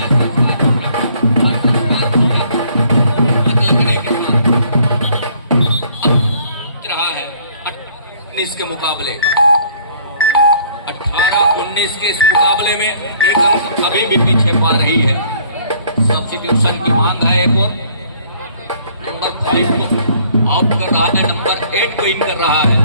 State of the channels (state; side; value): inverted; both; correlation -0.60